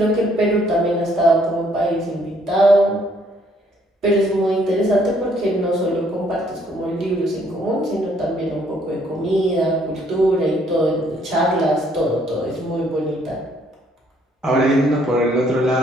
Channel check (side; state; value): both; normal; correlation 0.66